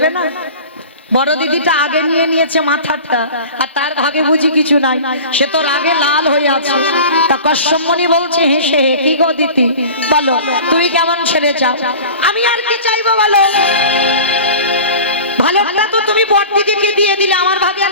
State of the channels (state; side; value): inverted; both; correlation -0.38